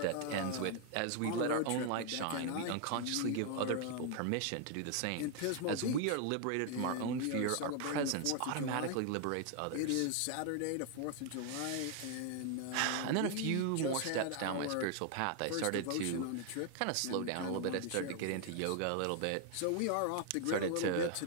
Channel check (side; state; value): both; different; correlation 0.00